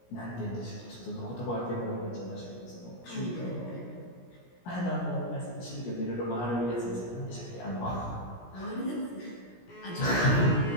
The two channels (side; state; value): right; late; 17 ms